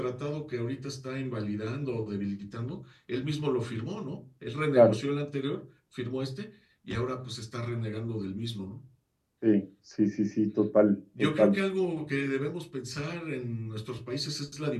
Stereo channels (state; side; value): identical; both; correlation 1.00